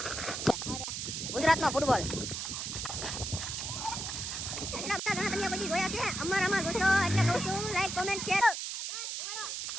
ગુજરાતનો ફૂટબોલ તમે પછી જોયા છે અમારામાં જોશો એટલે કહું છું લાઈક કોમેન્ટ શેર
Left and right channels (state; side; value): noise; right; hiss, 4 dB below the sound